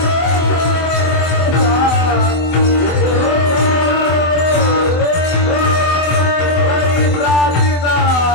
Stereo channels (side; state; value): right; late; 24 ms